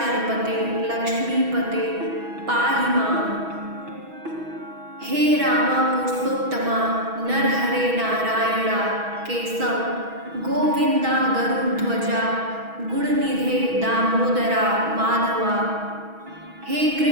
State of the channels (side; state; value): left; late; 6.2 ms